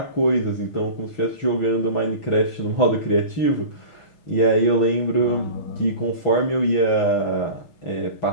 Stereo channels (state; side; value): late; right; 6.1 ms